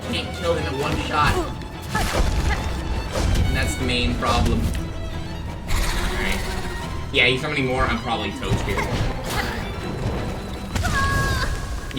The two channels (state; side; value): identical; both; correlation 1.00